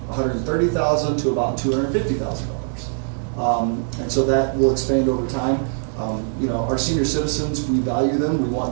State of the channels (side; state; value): left; silent; 64 dB below the other